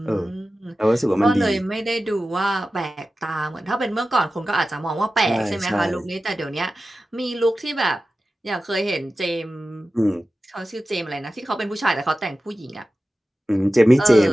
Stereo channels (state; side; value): normal; both; correlation 0.94